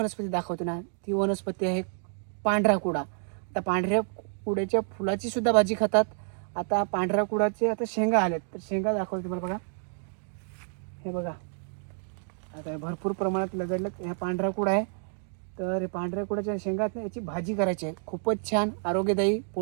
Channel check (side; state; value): left; silent; 59 dB below the other